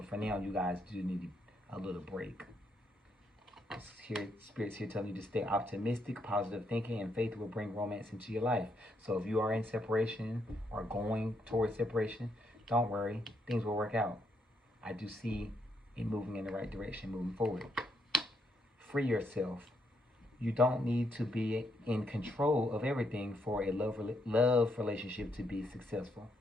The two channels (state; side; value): normal; both; correlation 0.76